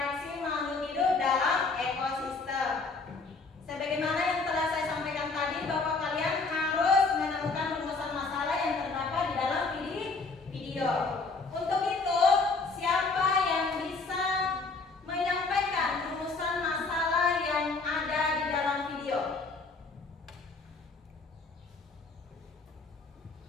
makhluk hidup dalam ekosistem. Sebagaimana yang telah saya sampaikan tadi bahwa kalian harus menemukan rumusan masalah yang terdapat di dalam video. Untuk itu, siapa yang bisa menyampaikan rumusan masalah yang ada di dalam video?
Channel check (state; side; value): quieter; right; 4.0 dB